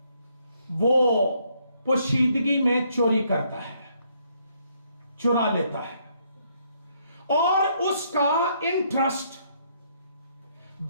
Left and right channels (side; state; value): both; inverted; correlation -0.70